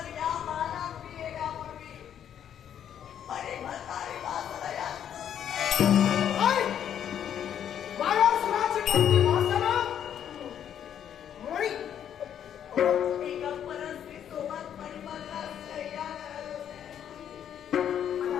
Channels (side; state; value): right; quieter; 9.5 dB